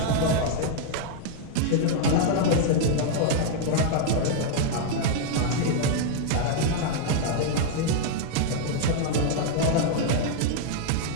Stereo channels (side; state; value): both; different; correlation 0.00